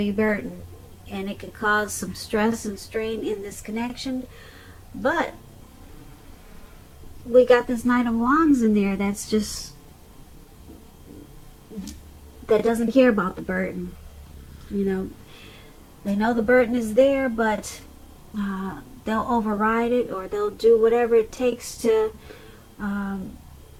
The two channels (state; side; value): identical; both; correlation 1.00